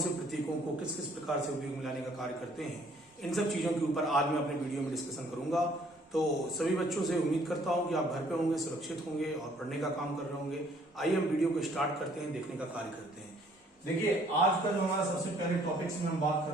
प्रतीकों को किस किस प्रकार से उपयोग में लाने का कार्य करते हैं, इन सब चीजों के ऊपर आज मैं अपने वीडियो में डिस्कशन करूंगा। तो सभी बच्चों से उम्मीद करता हूं कि आप घर पे होंगे, सुरक्षित होंगे और पढ़ने का काम कर रहे होंगे। आइए हम वीडियो को स्टार्ट करते हैं, देखने का कार्य करते हैं। देखिए, आज का जो हमारा सबसे पहले टॉपिक में हम बात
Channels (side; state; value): both; normal; correlation 0.61